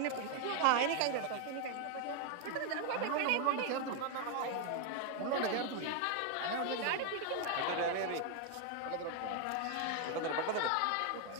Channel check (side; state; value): both; different; correlation 0.00